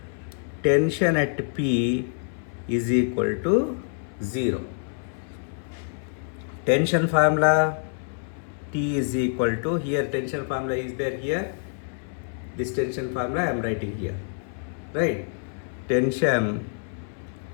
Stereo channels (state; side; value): silent; right; 61 dB below the other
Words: Tension at P is equal to 0. Tension formula, T is equal to, here tension formula is there here. This tension formula I am writing here, right? Tension